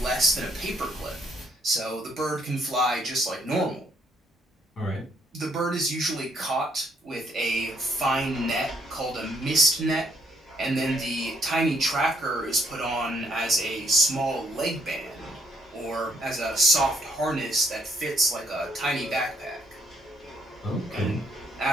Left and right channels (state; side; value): normal; both; correlation 0.69